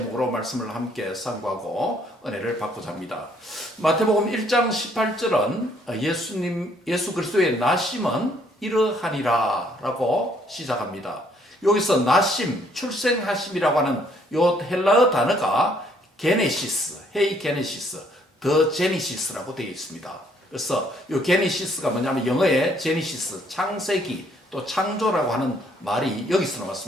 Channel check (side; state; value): both; normal; correlation 0.66